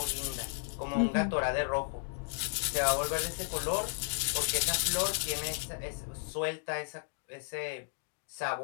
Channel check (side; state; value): right; silent; digital silence